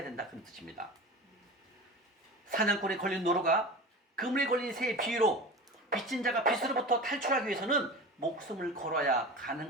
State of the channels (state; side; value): normal; both; correlation 0.32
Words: 된다 그런 뜻입니다. 사냥꾼에 걸린 노루가 그물에 걸린 새의 비유로 빚진 자가 빚으로부터 탈출하기 위해서는 목숨을 걸어야